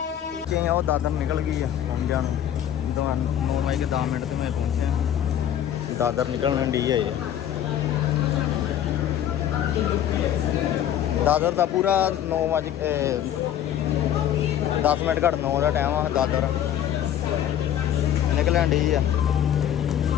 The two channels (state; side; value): quieter; right; 10.6 dB